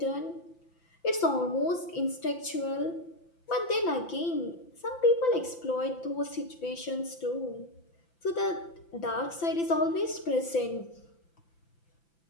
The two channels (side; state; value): right; late; 5.9 ms